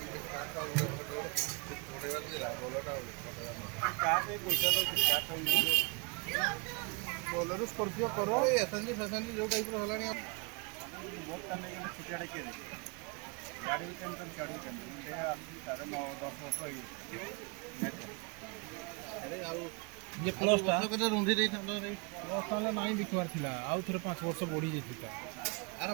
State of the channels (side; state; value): left; quieter; 32.0 dB